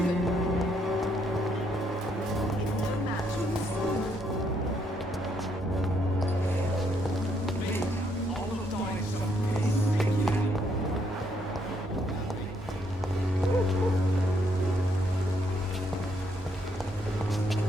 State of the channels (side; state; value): both; normal; correlation 0.73